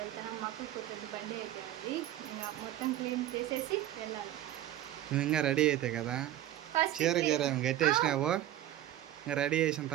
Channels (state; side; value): quieter; left; 12.9 dB